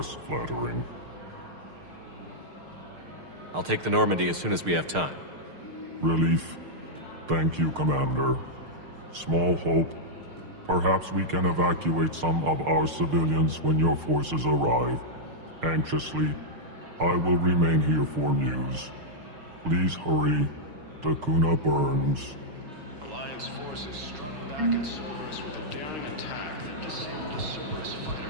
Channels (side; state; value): left; late; 6.5 ms